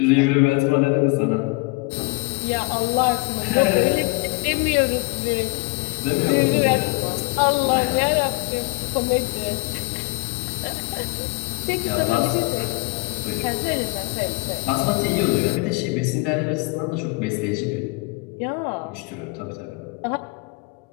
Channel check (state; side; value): quieter; right; 27.7 dB